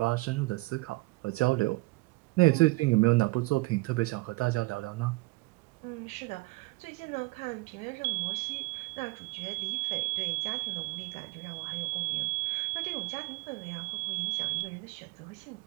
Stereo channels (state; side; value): quieter; left; 23.4 dB